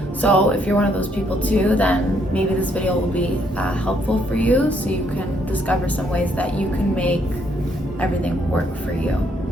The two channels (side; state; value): both; normal; correlation 0.71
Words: So if you're one of those people too, then maybe this video will be helpful for you, so you can discover some ways that you can make everything work for you.